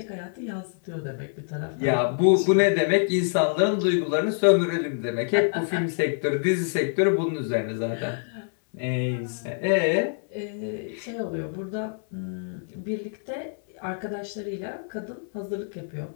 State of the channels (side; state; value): right; silent; 61 dB below the other